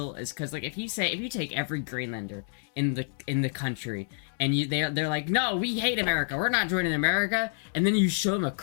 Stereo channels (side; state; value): right; silent; digital silence